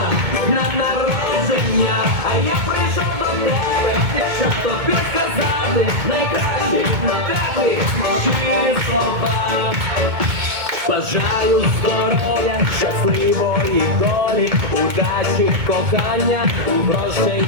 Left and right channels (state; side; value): late; left; 2.2 ms